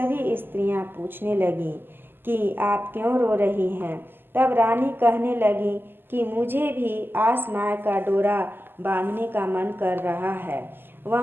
स्त्रियां पूछने लगीं कि आप क्यों रो रही हैं। तब रानी कहने लगी कि मुझे भी आस माई का डोरा बांधने का मन कर रहा है।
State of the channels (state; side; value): late; left; 0.097 ms